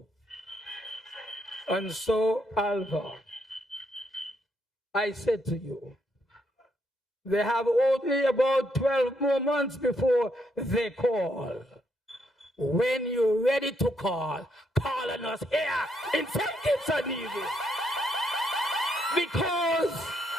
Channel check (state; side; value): normal; both; correlation 0.75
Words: And so, Alva, I said to you, they have only about 12 more months before they call. When you're ready to call on us here in St. Kitts-Nevis. Because